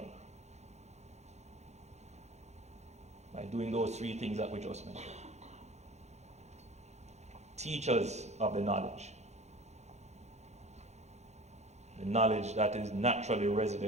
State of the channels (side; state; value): left; late; 0.32 ms